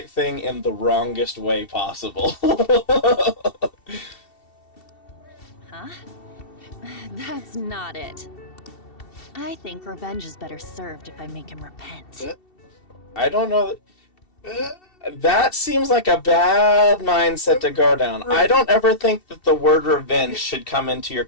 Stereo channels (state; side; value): late; right; 2.7 ms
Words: thing in the wrongest way possible. Huh? That's not it. I think revenge is better served if I make him repent. I don't know. Uh, That seems like a bad mindset to go down. I don't ever think that the word revenge should come into your